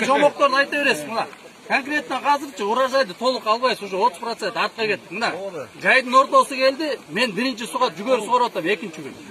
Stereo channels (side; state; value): both; identical; correlation 1.00